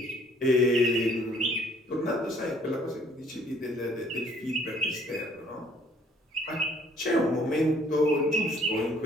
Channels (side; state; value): both; normal; correlation 0.60